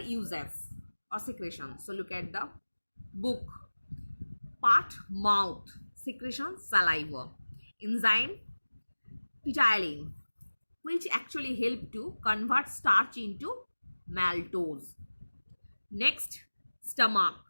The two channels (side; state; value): both; inverted; correlation -1.00